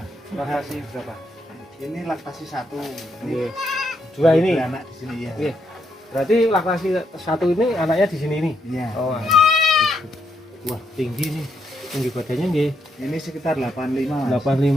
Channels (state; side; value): normal; both; correlation 0.77